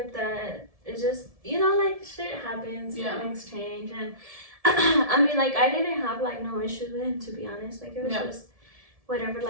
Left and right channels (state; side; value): late; left; 1.7 ms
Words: that. It's just, you know, like shit happens, things change, and I mean, like I didn't have like no issues with him, to be honest. Like it was just whatever,